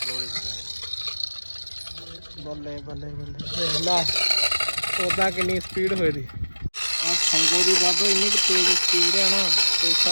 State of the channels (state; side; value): inverted; both; correlation -1.00